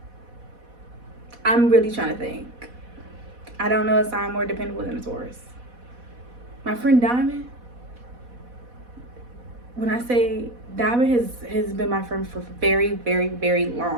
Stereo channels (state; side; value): late; left; 4.1 ms